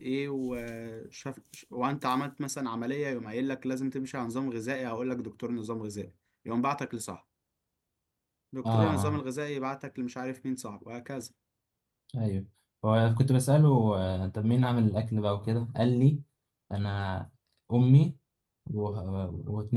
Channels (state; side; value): identical; both; correlation 1.00